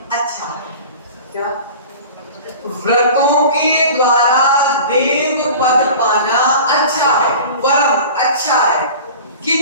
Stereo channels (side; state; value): both; inverted; correlation -0.38